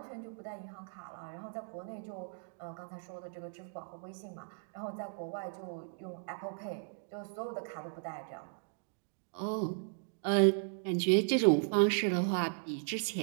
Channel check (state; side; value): silent; left; digital silence